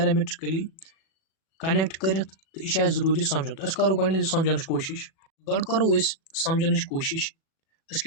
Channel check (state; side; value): late; right; 37 ms